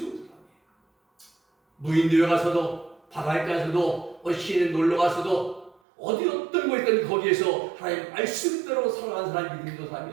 사람이에요. 무인도에 가서도 바다에 가서도 시내에 놀러 가서도 어디 어떤 곳이든 거기에서 하나님의 말씀대로 살아가는 사람이 믿음 좋은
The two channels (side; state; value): left; drops out; at 5.8 s